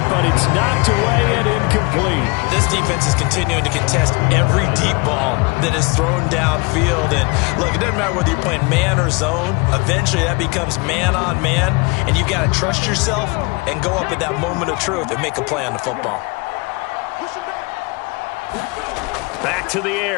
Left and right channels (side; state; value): right; quieter; 28.1 dB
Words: but it's knocked away and incomplete. This defense is continuing to contest every deep ball that is thrown downfield. And look, it doesn't matter whether you're playing man or zone. Eventually that becomes man on man, and you've got to trust yourself and go up at that moment of truth and make a play on the football. Back to the